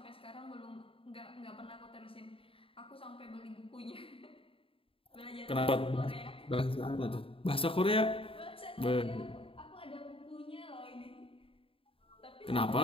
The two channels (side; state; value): right; late; 0.27 ms